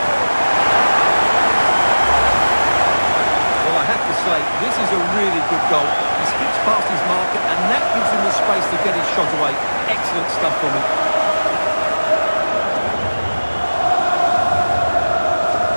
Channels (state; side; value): inverted; both; correlation -1.00